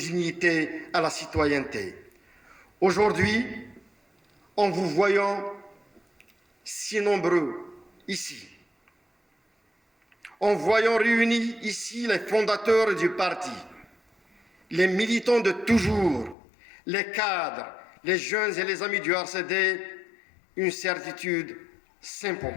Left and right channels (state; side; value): drops out; right; at 16.4 s